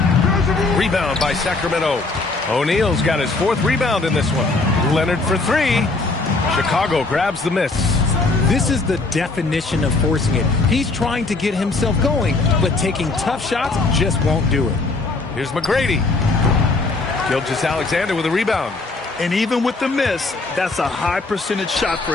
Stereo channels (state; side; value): quieter; right; 3.5 dB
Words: Rebound by Sacramento. O'Neal's got his 4th rebound in this one. Leonard for 3. Chicago grabs the miss. This is the definition of forcing it. He's trying to get himself going, but taking tough shots just won't do it. Here's McGrady. Gilgeous-Alexander with a rebound. And even with the miss, that's a high percentage shot for